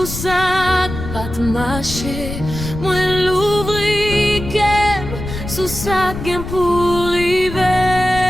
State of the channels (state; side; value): noise; left; rumble, 8 dB below the sound